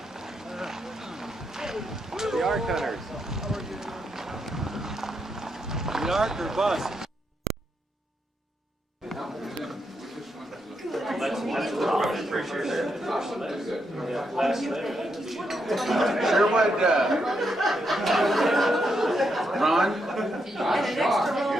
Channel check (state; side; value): normal; both; correlation 0.81